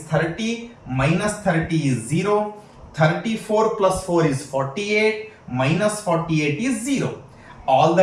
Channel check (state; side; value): identical; both; correlation 1.00